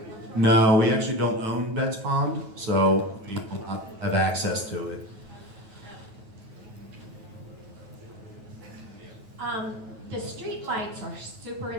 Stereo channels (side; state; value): left; late; 9.2 ms